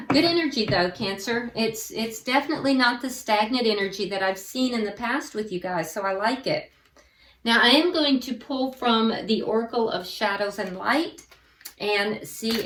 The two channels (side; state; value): both; identical; correlation 1.00